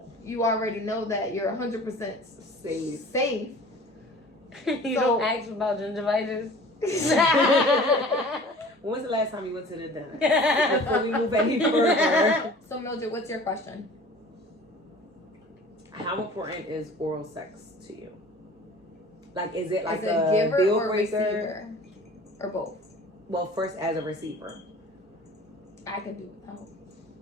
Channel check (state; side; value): normal; both; correlation 0.44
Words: you already know that you're 100% safe. You So- don't ask about gingivitis. When was the last time you went to the dentist? Before we move any further. So Mildred, what's your question? How important is oral sex to you? Like, is it like Is it a giver deal or breaker? receiver? Or both? Well, first as a receiver. I can do without.